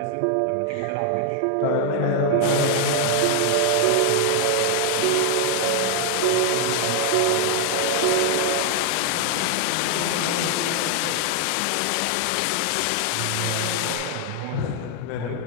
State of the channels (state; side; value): different; both; correlation 0.00